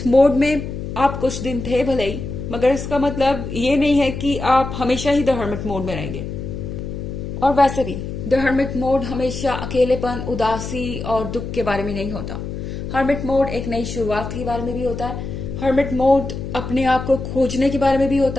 मोड में आप कुछ दिन थे भले ही, मगर इसका मतलब ये नहीं है कि आप हमेशा ही द हर्मिट मोड में रहेंगे। और वैसे भी द हर्मिट मोड हमेशा अकेलेपन, उदासी और दुख के बारे में नहीं होता। हर्मिट मोड एक नई शुरुआत के बारे में भी होता है। हर्मिट मोड अपने आप को खोजने के बारे में भी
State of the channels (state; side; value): noise; left; hum, 7 dB below the sound